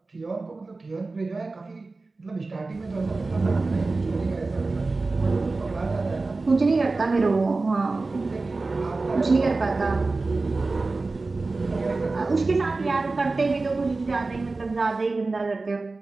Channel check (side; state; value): left; quieter; 3.6 dB